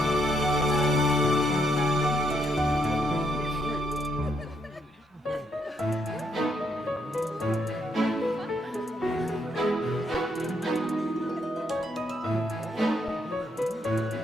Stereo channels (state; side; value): normal; both; correlation 0.75